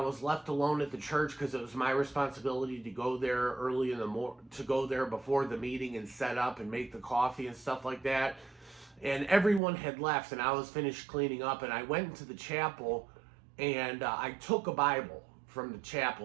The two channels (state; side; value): drops out; left; at 9.6 s